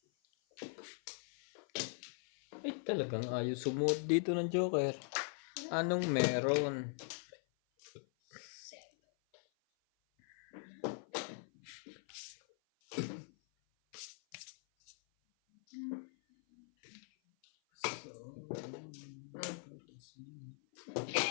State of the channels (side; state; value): right; silent; 50 dB below the other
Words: Ay talagang ayos sumuot dito ng Joker. Anong meron? Set.